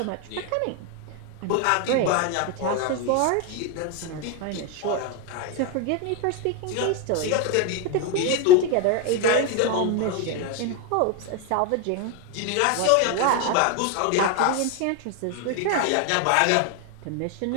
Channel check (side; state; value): both; different; correlation 0.02